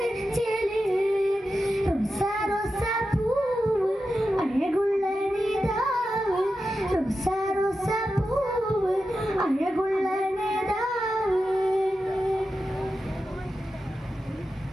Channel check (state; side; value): normal; both; correlation 0.91